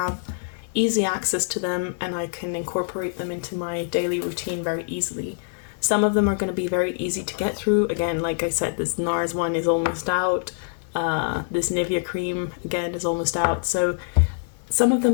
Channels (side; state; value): right; silent; digital silence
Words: easy access to them and I can incorporate them into my daily routine very easily. Some of them are going to be very easy to get through. Again, like I said, this NARS one is almost out. This Nivea cream, again, is almost out. So some of